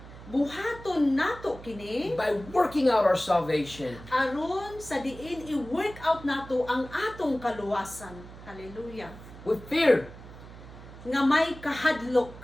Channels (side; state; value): right; noise; hum, 16 dB below the sound